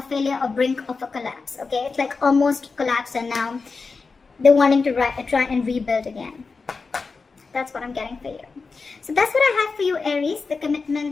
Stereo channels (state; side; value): quieter; right; 4.5 dB